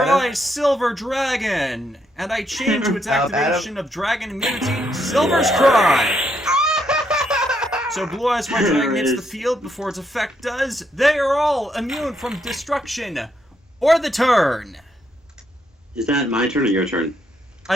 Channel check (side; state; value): both; normal; correlation 0.76